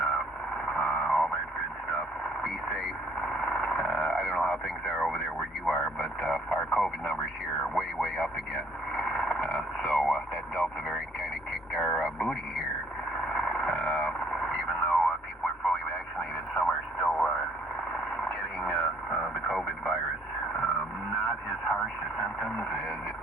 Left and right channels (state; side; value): normal; both; correlation 0.62